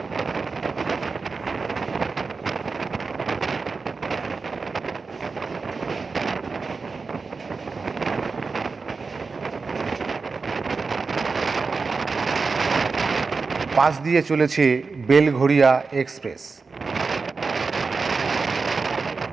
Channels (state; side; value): quieter; left; 4.5 dB